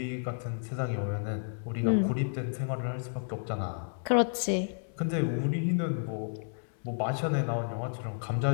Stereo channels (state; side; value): silent; right; 57 dB below the other